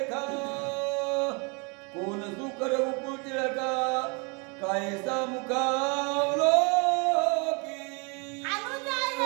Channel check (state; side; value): quieter; left; 32.4 dB